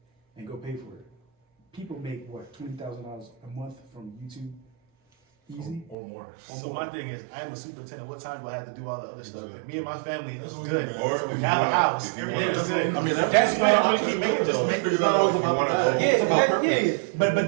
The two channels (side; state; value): left; drops out; at 6.0 s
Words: and go pay for it. People make what, $20,000 a month from YouTube, easy. or more. So my thing is, I'm a superintendent. What time do I have to do all the other stuff? Exactly. Me and my family, That's that's what good. we do, Or if you Have a want house. to, if you Everything want is good. I mean, That's why I keep making though. just Figure that not out over if you my wanna bag. go. Yeah, It's about yeah. But